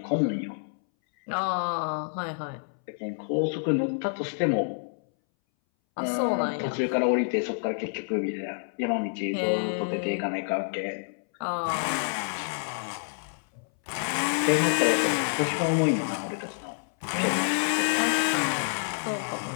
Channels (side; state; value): right; silent; 59 dB below the other